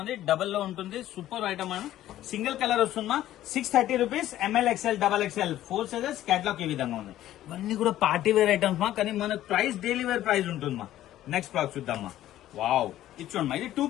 డబల్ లో ఉంటుంది. సూపర్ ఐటమ్ సింగిల్ కలర్ వస్తుందమ్మా. 630 rupees. ML, XL, XXL 4 sizes. Catalogue ఈ విధంగా ఉంది. ఇవన్నీ కూడా పార్టీ వేర్ ఐటమ్స్ కానీ మనకు ప్రైస్ డైలీ వేర్ ప్రైస్ ఉంటుందమ్మా. నెక్స్ట్ ప్రోడక్ట్ చూద్దామా. వావ్, ఇచ్చోండి ఇది 2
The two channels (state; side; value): quieter; right; 13.4 dB